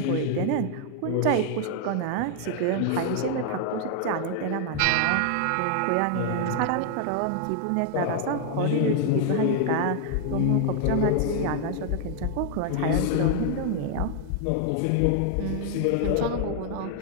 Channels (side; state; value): both; different; correlation 0.00